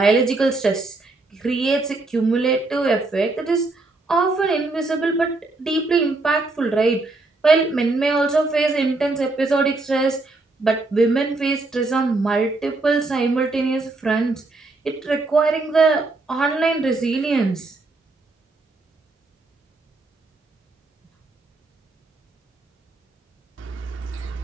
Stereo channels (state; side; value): quieter; left; 3.3 dB